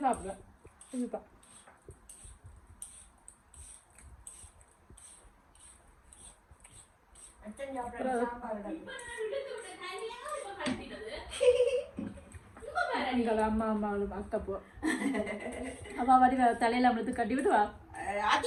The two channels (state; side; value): identical; both; correlation 1.00